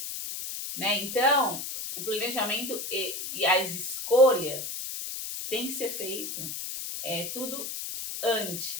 Né? Então, o planejamento e as escolhas tem que ser feito tudo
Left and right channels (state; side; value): noise; left; hiss, 6 dB below the sound